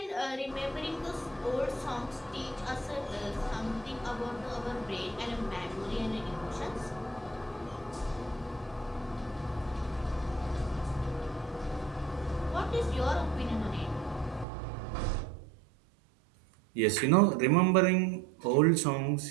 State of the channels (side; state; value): left; drops out; at 14.5 s